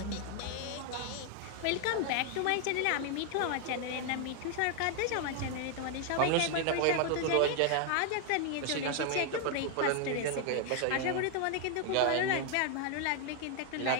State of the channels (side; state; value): both; different; correlation 0.00